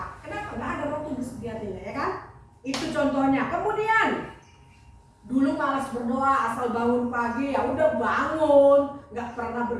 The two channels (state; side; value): identical; both; correlation 1.00